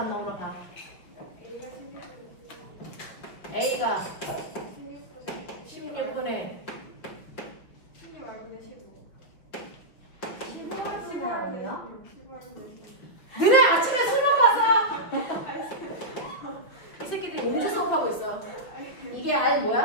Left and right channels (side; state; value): right; late; 5.7 ms